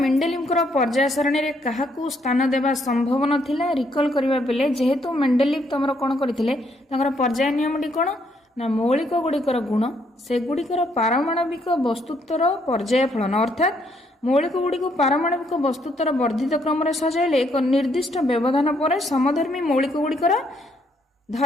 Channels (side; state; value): both; normal; correlation 0.71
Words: को पर्याय सारणी रे काहाकू स्थान देबा संभव नथिला रिकॉल करबा पिले जेहेतु मेंडेलिफ तमरो कोन करथिले तांकर पर्याय नियमटी कोन ना मौलिक गुड़िकर गुण से गुड़िकर पारमाणविक वस्तुत्वर पर्याय फलन अर्थात मौलिक गुड़िक पारमाणविक वस्तुत्वर वर्धित क्रम रे सजाइले एक निर्दिष्ट व्यवधान पर समधर्मी मौलिक गुड़िकर